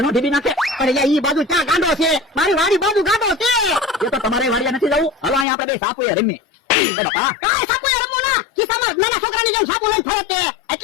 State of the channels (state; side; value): drops out; right; at 5.5 s